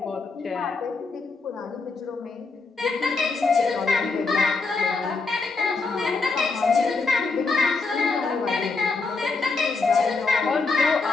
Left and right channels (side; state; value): right; quieter; 4.1 dB